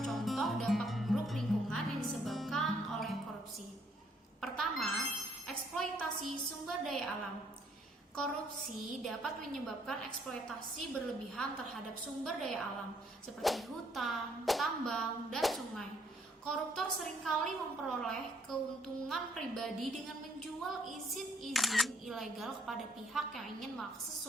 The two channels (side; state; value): both; normal; correlation 0.67